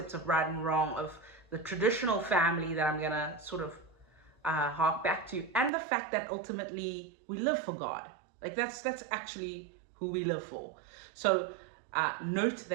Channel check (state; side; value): drops out; left; at 5.7 s